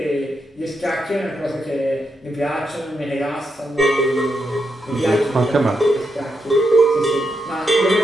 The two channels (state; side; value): normal; both; correlation 0.83